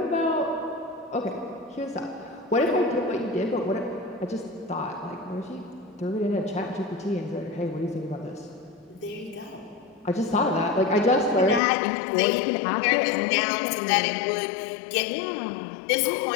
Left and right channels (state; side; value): drops out; right; at 11.6 s